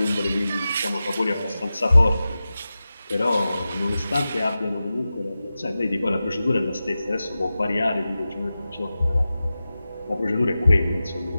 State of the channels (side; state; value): both; inverted; correlation -0.94